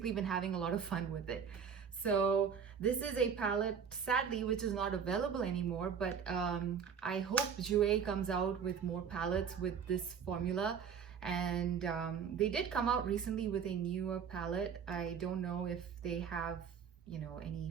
been having a lot of fun with it. So this is a palette, sadly, which is not available anymore, but I hope Jouer comes out with more palettes with this formula. And they did come out recently with a newer palette. I don't know if they have, you know, any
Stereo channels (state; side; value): quieter; left; 7.1 dB